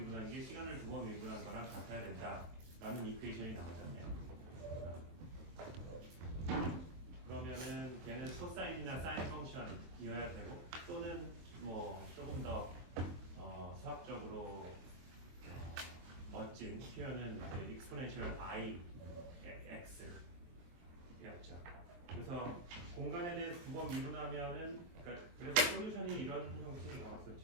게 시간을 두 번 미분한 거랑 같아야 된다라는 이퀘이션이 나오잖아요. 그러면은 걔는 코사인이나 사인 펑션이어야 되고, 또는 뭐 조금 더 수학적으로 멋진 표현은 exponential i x였죠. 그래서 공간에 대해서 두 번 미분하면은, 그러니까 그래서 솔루션이 이런 형식이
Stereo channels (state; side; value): late; left; 23 ms